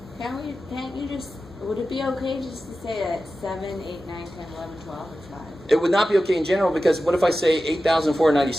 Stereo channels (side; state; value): both; normal; correlation 0.93